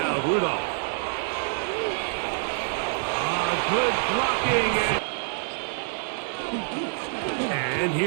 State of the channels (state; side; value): silent; left; digital silence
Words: Rudolph. Good blocking. And